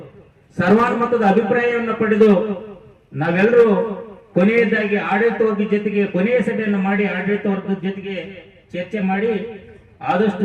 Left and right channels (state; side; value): identical; both; correlation 1.00